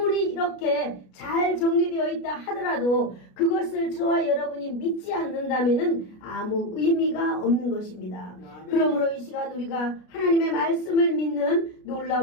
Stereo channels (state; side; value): late; right; 33 ms